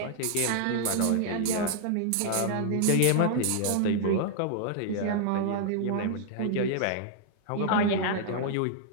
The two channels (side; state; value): both; different; correlation -0.01